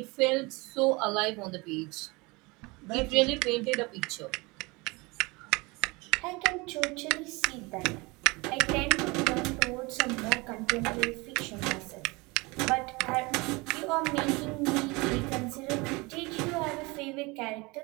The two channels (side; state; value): left; quieter; 25.3 dB